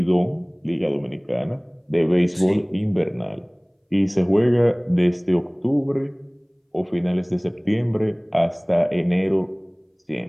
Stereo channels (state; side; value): identical; both; correlation 1.00